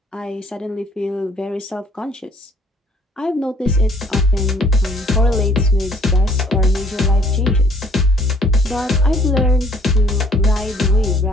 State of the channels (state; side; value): normal; both; correlation 0.60